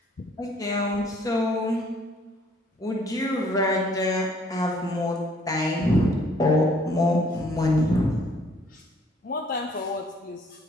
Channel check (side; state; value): both; normal; correlation 0.61